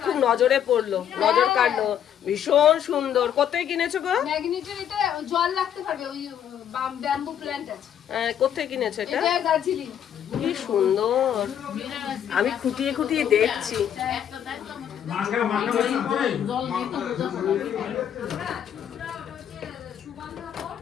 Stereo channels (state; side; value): quieter; right; 9.5 dB